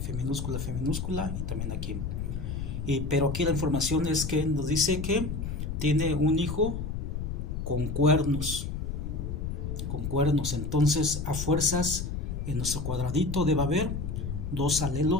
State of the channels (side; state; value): left; noise; rumble, 4 dB below the sound